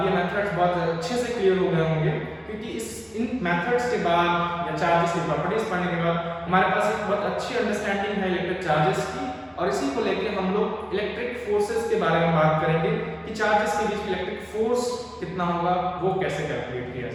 ये मेथड्स बहुत अच्छे से क्लियर हो गए होंगे, क्योंकि इन मेथड्स के बाद या चार्जेस की प्रॉपर्टीज पढ़ने के बाद हमारे पास एक बहुत अच्छी अंडरस्टैंडिंग है इलेक्ट्रिक चार्जेस की, और इसी को लेके हम लोग इलेक्ट्रिक फोर्सेस के बारे में बात करेंगे कि चार्जेस के बीच इलेक्ट्रिक फोर्स कितना होगा, वो कैसे कैलकुलेट किया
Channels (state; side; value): identical; both; correlation 1.00